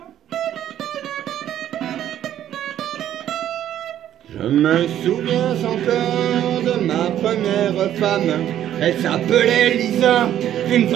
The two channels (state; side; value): quieter; left; 11.3 dB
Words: Je me souviens encore de ma première femme. Elle s'appelait Lisa, une